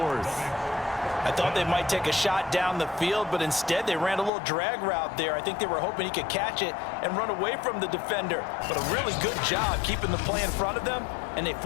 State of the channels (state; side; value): drops out; right; at 4.3 s